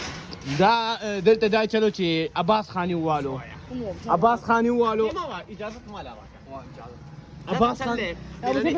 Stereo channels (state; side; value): identical; both; correlation 1.00